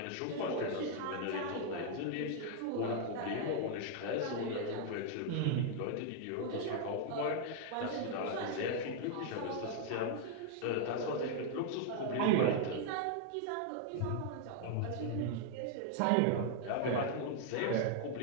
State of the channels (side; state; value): both; different; correlation 0.00